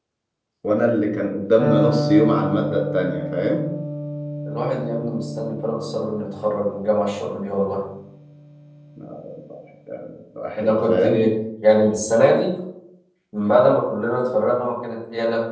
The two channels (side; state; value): both; identical; correlation 1.00